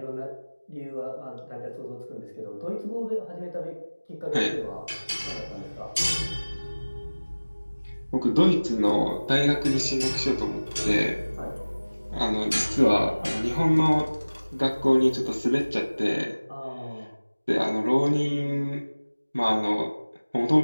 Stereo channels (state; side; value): inverted; both; correlation -1.00